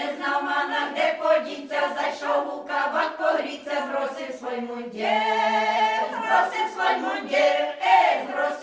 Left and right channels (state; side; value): identical; both; correlation 1.00